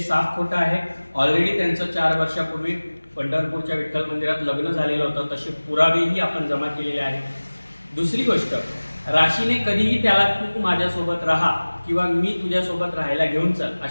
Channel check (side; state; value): both; inverted; correlation -1.00